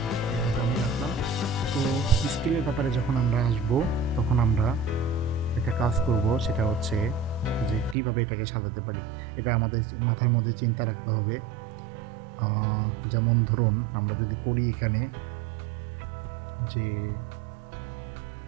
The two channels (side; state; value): left; drops out; at 8.0 s